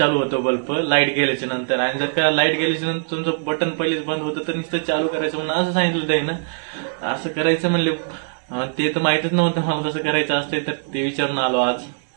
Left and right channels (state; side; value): silent; left; 65 dB below the other